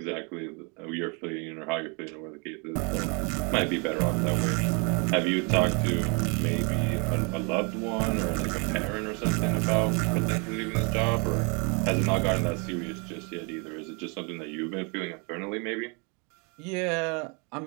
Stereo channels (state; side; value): quieter; left; 33.6 dB